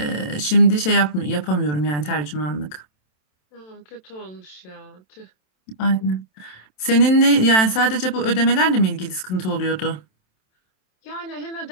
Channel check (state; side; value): late; right; 27 ms